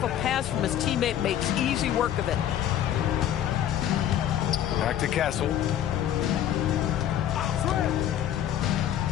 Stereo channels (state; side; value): quieter; right; 11.0 dB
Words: a pass from his teammate makes easy work of it. Back to Castle.